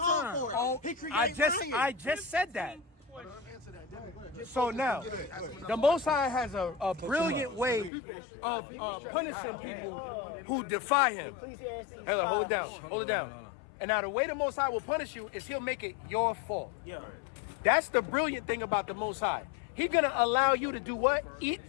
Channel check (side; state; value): right; drops out; at 7.9 s